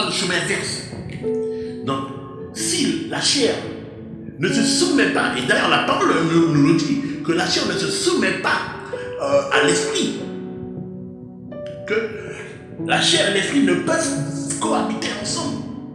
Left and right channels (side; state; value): both; identical; correlation 1.00